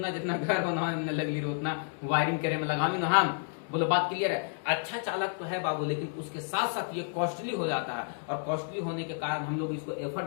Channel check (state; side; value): silent; right; 57 dB below the other